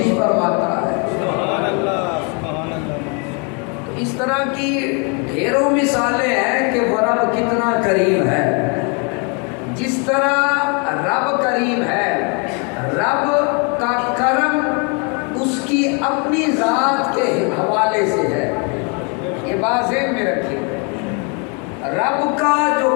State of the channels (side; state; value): right; quieter; 35.1 dB